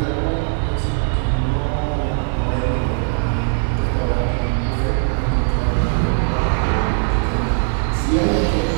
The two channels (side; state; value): left; silent; 57 dB below the other